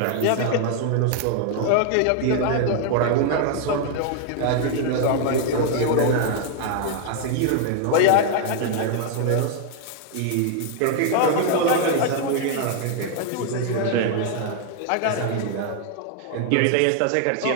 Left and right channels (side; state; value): both; different; correlation 0.00